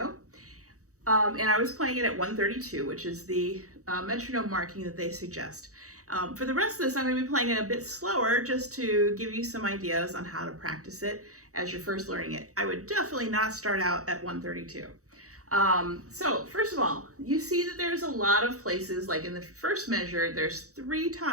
And I was playing it at 132, which is the metronome marking that they suggest. For the rest of this, I'm going to be playing it a bit slower just to give you some ideas on how to practice it as you're first learning it. I would definitely not start out at 132. So first of all, you see that there's a lot of places, like in the first measure, there's 3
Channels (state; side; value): late; left; 0.65 ms